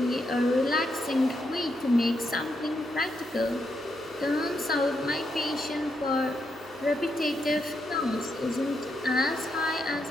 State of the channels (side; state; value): both; normal; correlation 0.81